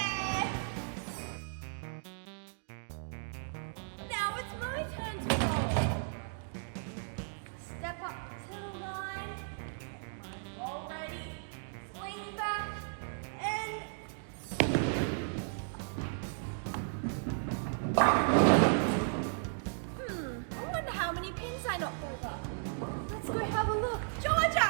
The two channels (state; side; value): silent; left; digital silence